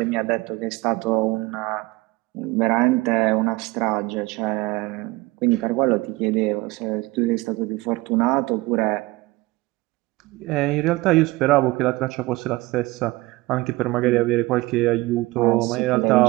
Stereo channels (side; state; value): left; quieter; 21.2 dB